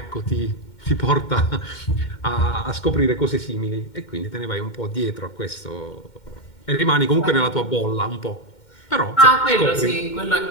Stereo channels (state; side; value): late; right; 2.1 ms